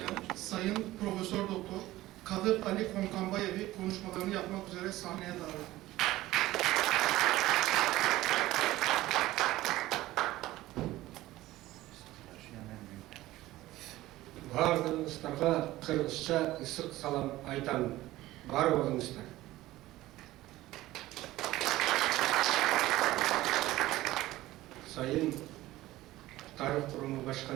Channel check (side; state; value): left; quieter; 16.7 dB